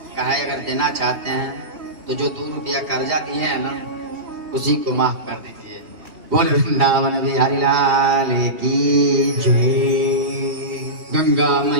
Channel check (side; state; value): left; late; 2.8 ms